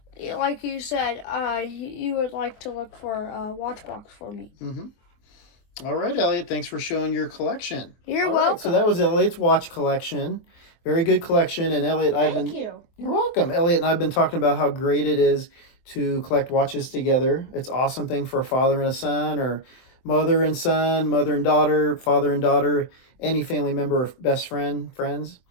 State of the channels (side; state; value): right; late; 24 ms